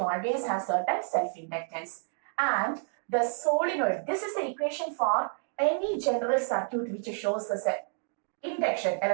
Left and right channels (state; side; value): silent; left; 58 dB below the other